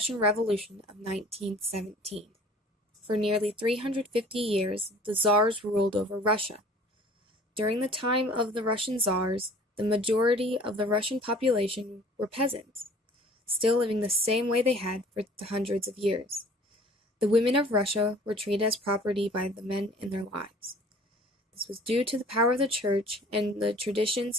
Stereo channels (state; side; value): normal; both; correlation 0.49